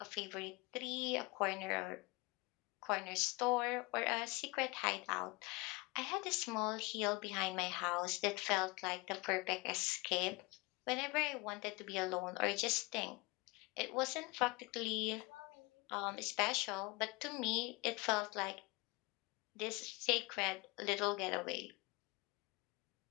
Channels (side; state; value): right; quieter; 25.5 dB